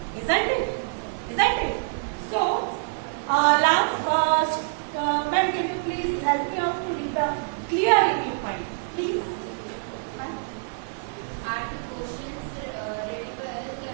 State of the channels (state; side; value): silent; left; digital silence